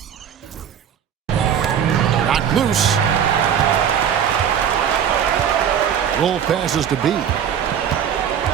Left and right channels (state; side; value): quieter; left; 8.6 dB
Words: Loose. Roll passes to B.